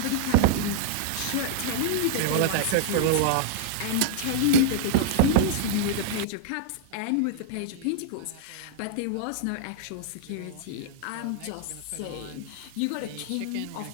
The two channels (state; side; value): different; both; correlation -0.01